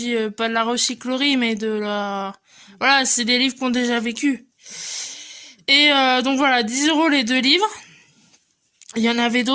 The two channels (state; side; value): identical; both; correlation 1.00